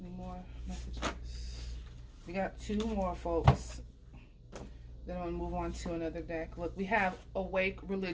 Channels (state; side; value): identical; both; correlation 1.00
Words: Any more messages? We got 2 more, folks. Then I'm going to move on to another deck. Look, we have awake,